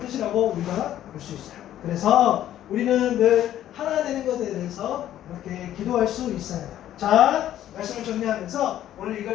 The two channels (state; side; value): quieter; right; 12.1 dB